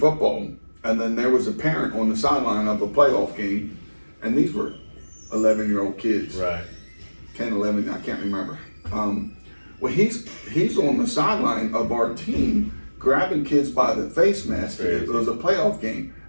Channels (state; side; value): inverted; both; correlation -1.00